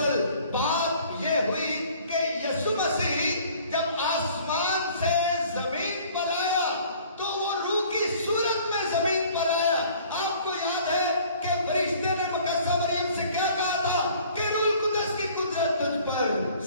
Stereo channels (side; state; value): both; inverted; correlation -0.53